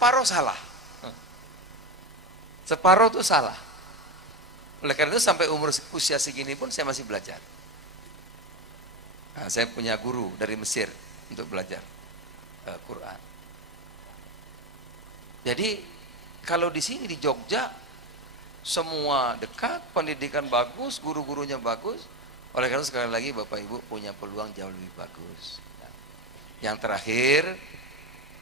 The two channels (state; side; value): normal; both; correlation 0.18